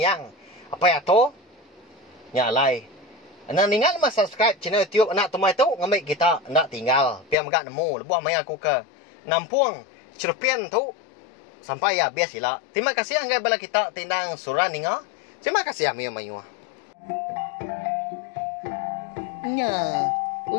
apa ya to nyalai. Anak ningal mas subscribe channel YouTube anak temai tu ngamai kita nak tinggal piam gak nemu lebuah mai aku ke Nampung Cerpen tu sampai ya biasilah. Terima kasih anggai bala kita tindang surah ninga. Terima kasih amia mayu. Nah,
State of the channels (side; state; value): right; drops out; at 7.4 s